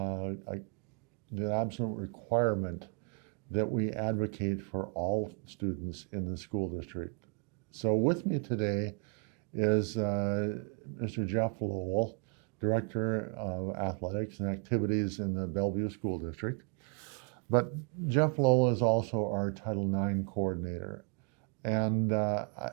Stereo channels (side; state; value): left; quieter; 39.3 dB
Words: requirement that we advocate for all students in the school district. So with me today is Mr. Jeff Lowell, Director of Athletics and Activities in the Bellevue School District. But Jeff Lowell is also our Title IX coordinator. And